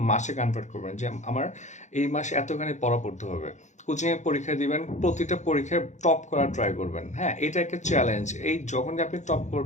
মাসে কনভার্ট করবেন, যে আমার এই মাসে এতখানি পড়া পড়তে হবে। কোচিংয়ে পরীক্ষা দিবেন, প্রতিটা পরীক্ষায় টপ করার ট্রাই করবেন। হ্যাঁ, এটা একটা চ্যালেঞ্জ। এই যখনই আপনি টপ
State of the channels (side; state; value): right; late; 0.34 ms